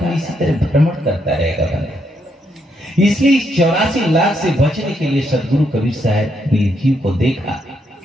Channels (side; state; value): both; normal; correlation 0.77